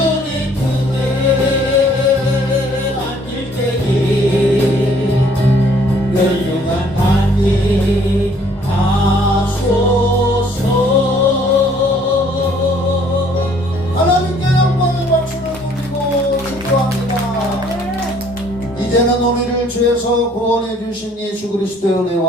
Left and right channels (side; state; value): both; normal; correlation 0.60